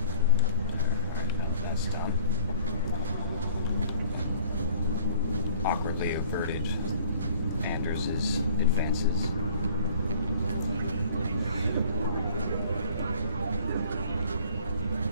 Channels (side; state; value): both; inverted; correlation -0.53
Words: That's dumb. Awkwardly averted Anders' advances.